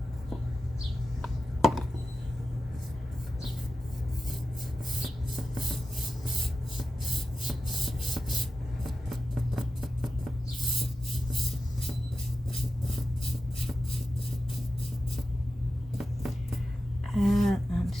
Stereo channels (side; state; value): both; normal; correlation 0.92